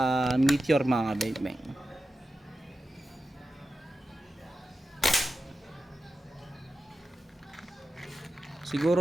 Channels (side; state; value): both; normal; correlation 0.92